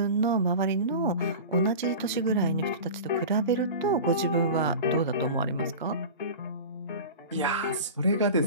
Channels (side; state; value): both; inverted; correlation -0.32